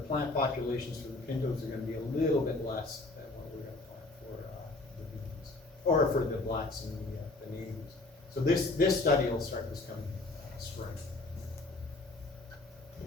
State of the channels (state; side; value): quieter; right; 3.1 dB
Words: plant populations for the pintos are going to be a little bit less than what we're going to plant for the beans, or for the blacks and the navies. So this study will start this coming spring.